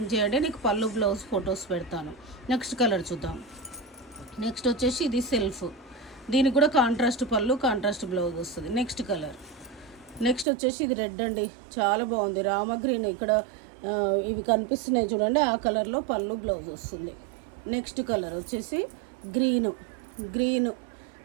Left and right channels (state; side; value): drops out; left; at 10.5 s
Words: చేయండి, నీకు పళ్ళు బ్లౌజ్ ఫొటోస్ పెడతాను. నెక్స్ట్ కలర్ చూద్దాం. నెక్స్ట్ వచ్చేసి ఇది సెల్ఫ్, దీనికి కూడా కాంట్రాస్ట్ పళ్ళు, కాంట్రాస్ట్ బ్లౌజ్ వస్తుంది. Next colour. నెక్స్ట్ వచ్చేసి ఇది రెడ్ అండి, చాలా బాగుంది. రామ గ్రీన్ ఇక్కడ ఇవి కనిపిస్తున్నాయి చూడండి, ఆ కలర్లో పళ్ళు బ్లౌజ్ వస్తుంది. నెక్స్ట్ కలర్ వచ్చేసి గ్రీను,